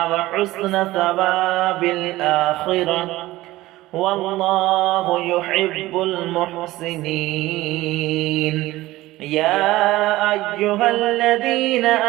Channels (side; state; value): left; quieter; 17.5 dB